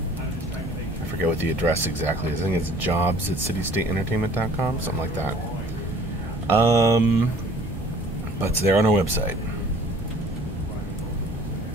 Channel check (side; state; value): both; normal; correlation 0.52